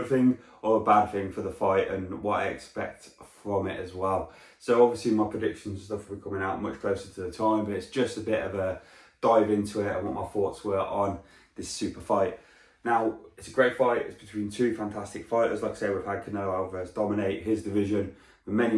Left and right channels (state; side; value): identical; both; correlation 1.00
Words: thing or a bad thing for the fight and what I expect from it as well. So obviously my predictions and stuff will be coming out much closer to the time, but it's just a bit of a dive into it and what my thoughts were on this super fight. Now, it's a great fight. It's between two fantastic fighters. Like I say, we've had Canelo Alvarez dominate his division for many,